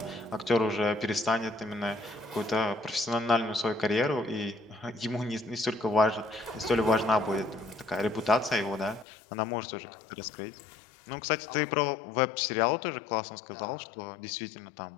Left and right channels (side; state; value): right; drops out; at 9.1 s